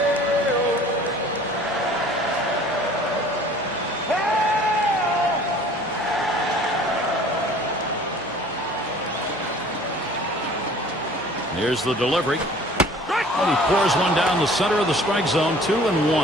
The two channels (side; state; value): both; normal; correlation 0.49